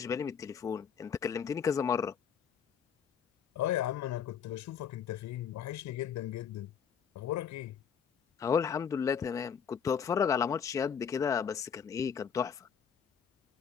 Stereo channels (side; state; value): right; quieter; 7.4 dB